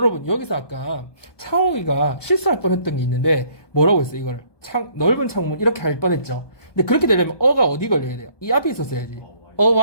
여기서 아까 창욱이가 실수할 뻔했던 게 있는데 뭐라고 했어요? 이거를 넓은 창문 이렇게 할 뻔했죠. 근데 그렇게 되려면 어가 어디 걸려야 돼요? 이 앞에 있었어야지.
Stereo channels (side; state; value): right; late; 1.2 ms